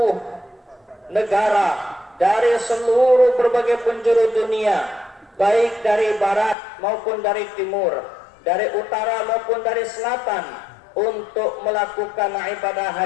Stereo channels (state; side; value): drops out; right; at 6.6 s